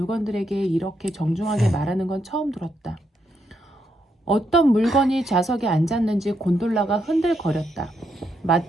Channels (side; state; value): both; normal; correlation 0.79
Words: 이렇게 정중하게 말하는 건 처음 들었다. 어떤 물건이 좌석에 앉았는지 곤돌라가 흔들거렸다.